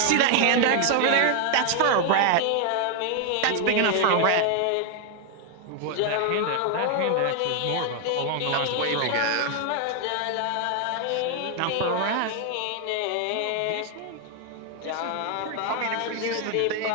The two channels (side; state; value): both; different; correlation 0.00